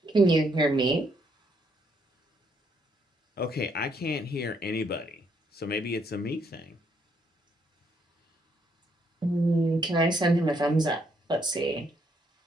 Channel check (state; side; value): normal; both; correlation 0.72